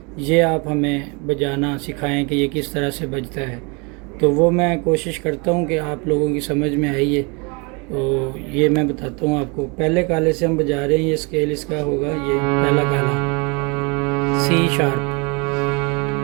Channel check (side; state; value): left; quieter; 30.7 dB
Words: ये आप हमें बजाना सिखाएं कि ये किस तरह से बजता है। तो वो मैं कोशिश करता हूँ कि आप लोगों की समझ में आई है। तो ये मैं बताता हूँ आपको। पहले काले से हम बजा रहे हैं, ये स्केल इसका होगा, ये पहला काला सी शार्प।